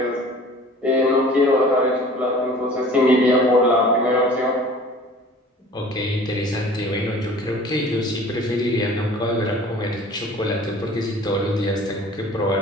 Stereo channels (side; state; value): both; normal; correlation 0.47